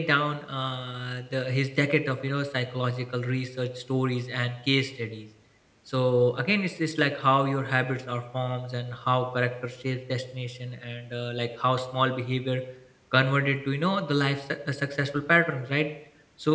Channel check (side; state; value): both; identical; correlation 1.00